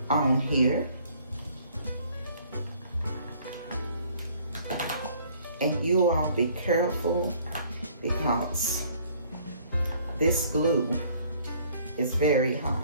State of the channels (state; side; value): inverted; both; correlation -0.58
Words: on here. And you all be careful because this glue is very hot.